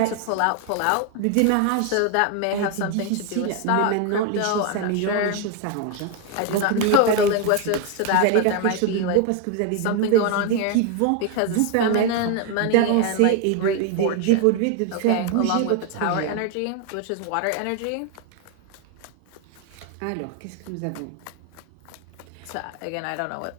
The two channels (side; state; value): both; different; correlation 0.01